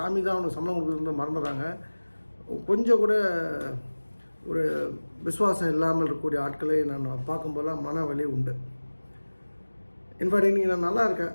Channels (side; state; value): both; inverted; correlation -1.00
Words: தான் அவனுக்கு சம்பளம் கொடுக்குறது மறந்துடுறாங்க. கொஞ்சம் கூட ஒரு விசுவாசம் இல்லாமல் இருக்கக்கூடிய ஆட்களை நான் பார்க்கும்போதெல்லாம் மன வலி உண்டு. இன்ஃபேக்ட் இன்றைக்கி நான் நல்லா இருக்கேன்,